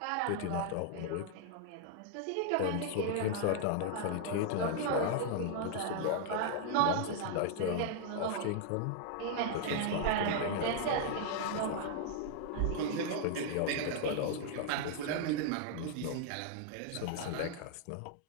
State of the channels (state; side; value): different; both; correlation 0.00